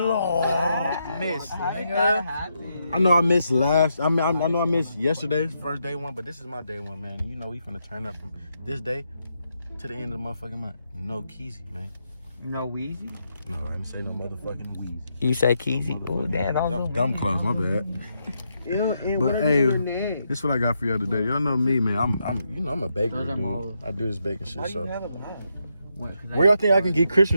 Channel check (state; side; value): inverted; both; correlation -0.81